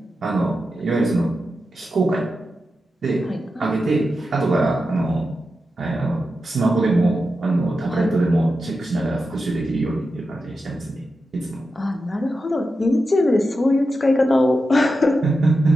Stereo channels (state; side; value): normal; both; correlation 0.90